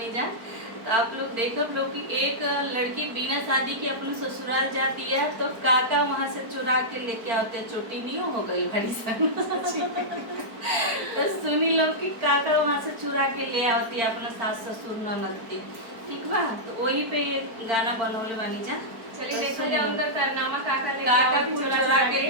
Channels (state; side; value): late; left; 4.5 ms